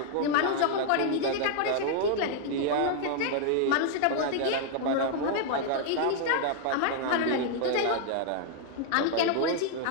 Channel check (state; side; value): different; both; correlation 0.00